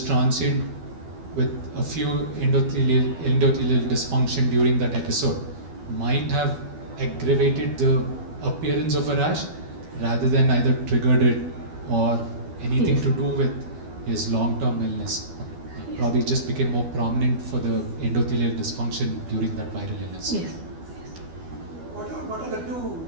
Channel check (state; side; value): late; left; 12 ms